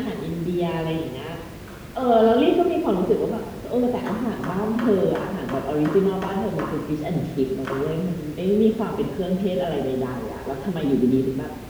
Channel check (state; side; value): identical; both; correlation 1.00